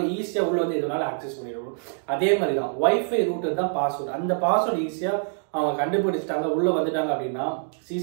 ஈஸியா உள்ள வந்து எதனால ஆக்சஸ் பண்ணிடுவோம். அதே மாதிரி தான் வைஃபை ரூட்டர் தான் பாஸ்வேர்டு. அந்த பாஸ்வேர்டு ஈஸியா அவங்க கண்டுபிடிச்சிட்டாங்க, உள்ள வந்துட்டாங்க அப்படின்னா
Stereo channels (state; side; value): silent; left; digital silence